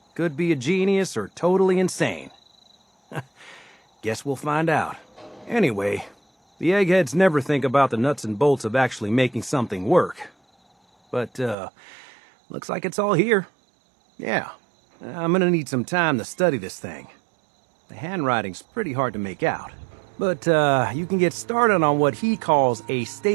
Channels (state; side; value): drops out; left; at 11.6 s